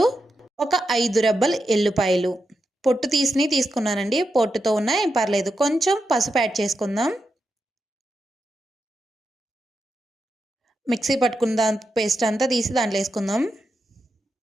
ఒక 5 రెబ్బలు ఎల్లుపాయలు, పొట్టు తీసుకున్నానండి. పొట్టుతో ఉన్నా ఏం పర్లేదు. కొంచెం పసుపు యాడ్ చేసుకుందాం. మిక్సీ పట్టుకున్న పేస్ట్ అంతా తీసి దాంట్లో వేసుకుందాం.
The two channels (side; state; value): both; normal; correlation 0.87